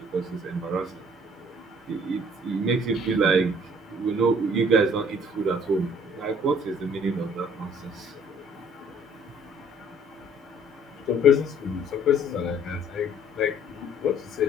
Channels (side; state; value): both; normal; correlation 0.57